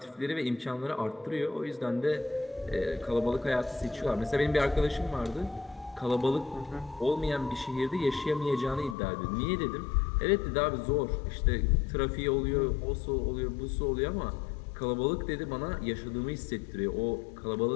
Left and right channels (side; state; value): right; drops out; at 9.0 s